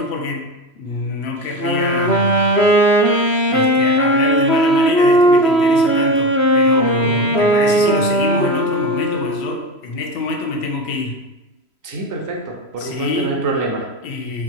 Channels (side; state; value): right; late; 3.0 ms